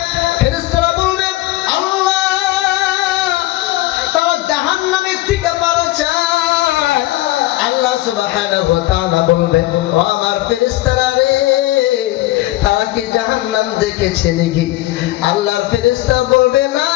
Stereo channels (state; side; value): quieter; right; 17.4 dB